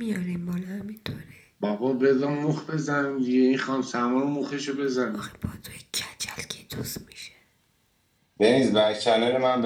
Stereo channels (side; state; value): both; identical; correlation 1.00